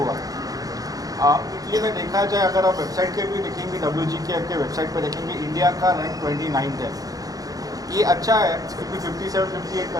इटली में देखा जाए, अगर आप वेबसाइट के भी देखेंगे, WGKF के वेबसाइट पर देखेंगे, इंडिया का रैंक 29 है। ये अच्छा है क्योंकि 57-58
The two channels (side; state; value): left; late; 0.18 ms